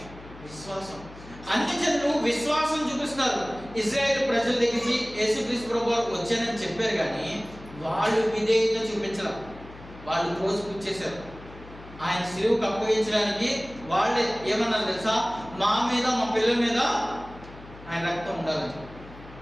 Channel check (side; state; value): left; noise; hum, 18 dB below the sound